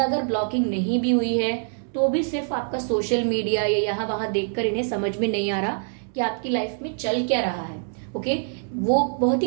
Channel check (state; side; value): silent; left; 60 dB below the other